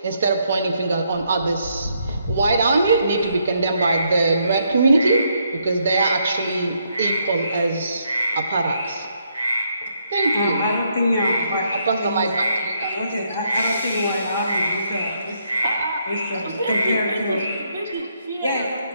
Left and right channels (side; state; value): both; inverted; correlation -0.75